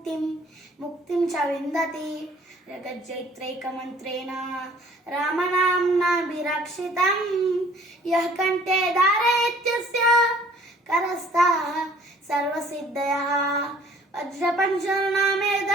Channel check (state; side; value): normal; both; correlation 0.55